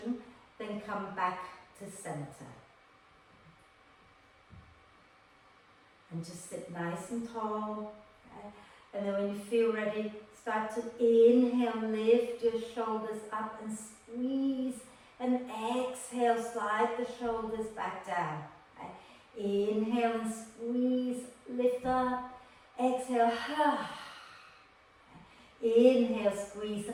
then come back to center. And just sit nice and tall. Okay? And then when you feel ready, start to inhale, lift your shoulders up and squeeze. And exhale, slide the shoulders back down. Okay? Inhale and squeeze, lift up. Exhale, inhale, squeeze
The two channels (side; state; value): both; identical; correlation 1.00